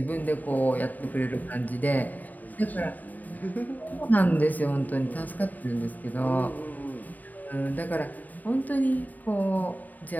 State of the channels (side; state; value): right; late; 0.082 ms